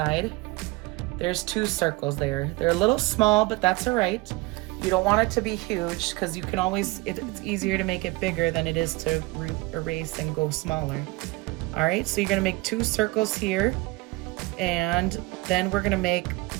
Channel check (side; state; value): left; quieter; 22.0 dB